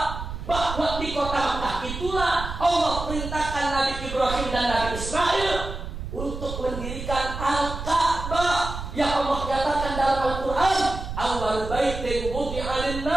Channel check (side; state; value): right; noise; rumble, 7 dB below the sound